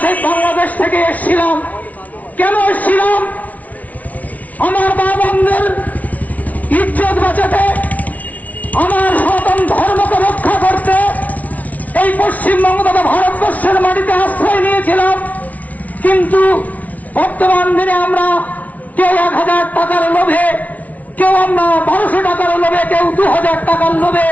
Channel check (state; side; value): late; right; 0.071 ms